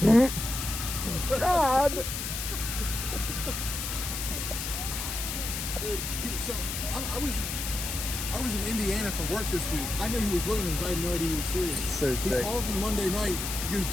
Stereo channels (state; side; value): noise; left; hiss, 4 dB below the sound